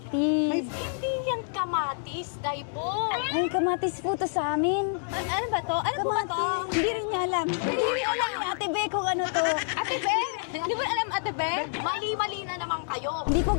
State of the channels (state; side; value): silent; right; digital silence